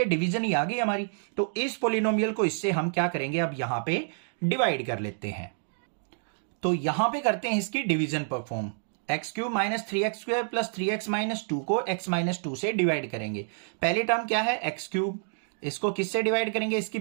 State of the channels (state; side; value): silent; left; digital silence